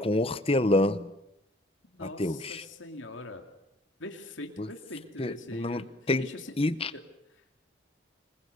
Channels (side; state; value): both; normal; correlation 0.56